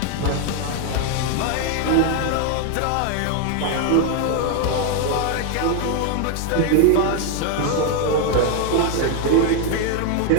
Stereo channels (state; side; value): different; both; correlation 0.01